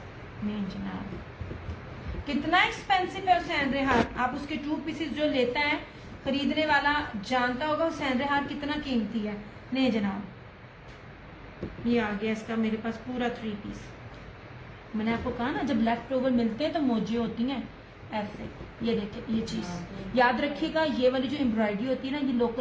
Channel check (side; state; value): both; identical; correlation 1.00